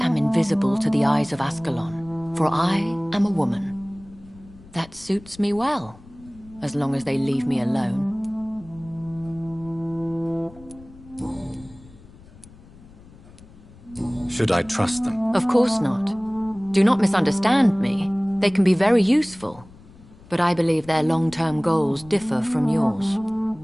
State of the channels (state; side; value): noise; left; rumble, 22 dB below the sound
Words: am invisible to the eyes of Ascalon, for I am a woman. That suits me well, as long as they leave me alone. Should I trust them? Of course not. Do not misunderstand me. They can be very useful, but I believe their long-term goals differ from yours.